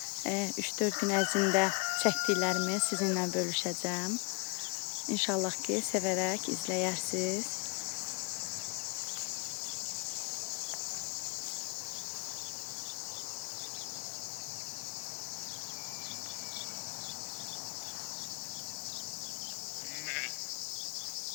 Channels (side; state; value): right; quieter; 31.0 dB